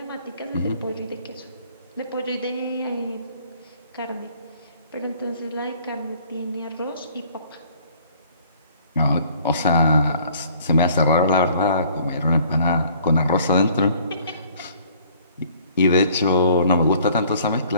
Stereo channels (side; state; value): both; inverted; correlation -0.57